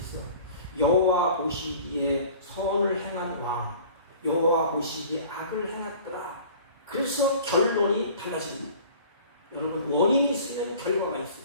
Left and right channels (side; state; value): both; inverted; correlation -0.46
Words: 여호와 보시기에 선을 행한 왕, 여호와 보시기에 악을 행했더라. 그래서 결론이 달라집니다. 여러분 원인이 있으면 결과가 있어요.